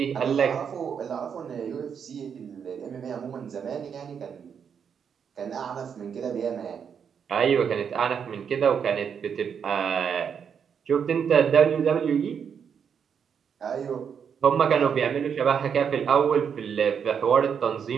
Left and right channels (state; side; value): quieter; left; 7.2 dB